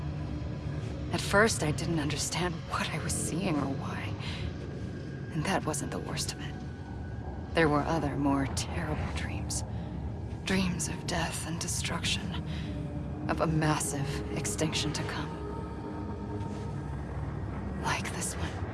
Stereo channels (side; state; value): both; identical; correlation 1.00